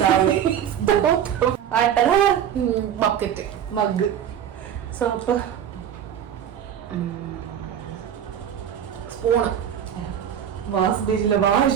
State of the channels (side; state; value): left; quieter; 9.4 dB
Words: bucket, mug, soap, spoon, wash basin,